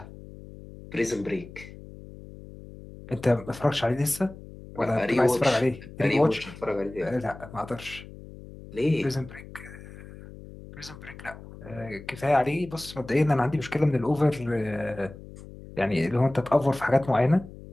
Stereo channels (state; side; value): noise; left; hum, 16 dB below the sound